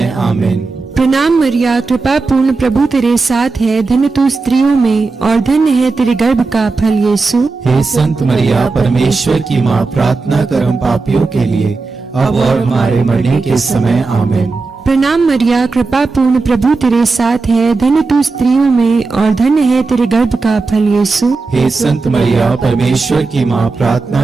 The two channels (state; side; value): quieter; left; 4.0 dB